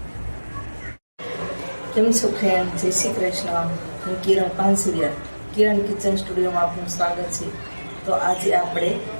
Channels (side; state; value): both; inverted; correlation -1.00